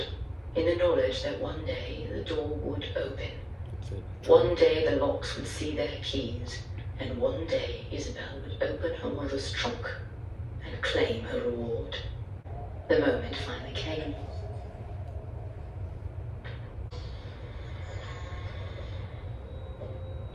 in the knowledge that one day the door would open. One day the locks would see their keys, and one day Isabel would open her mother's trunk and claim her reward. The moment finally came.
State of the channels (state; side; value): identical; both; correlation 1.00